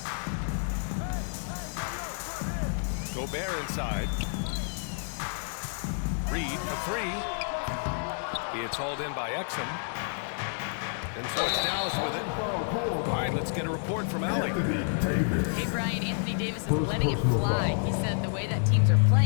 Gobert inside. Reed for 3. It's hauled in by Exum. And so it's Dallas with it. All right, let's get a report from Allie. Hey, Brian, Anthony Davis is letting it fly. He said, the way that teams are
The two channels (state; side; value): silent; right; digital silence